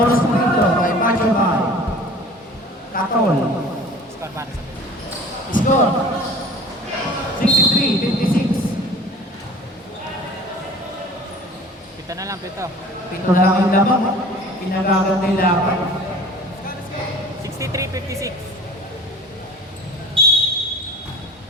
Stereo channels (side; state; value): both; normal; correlation 0.44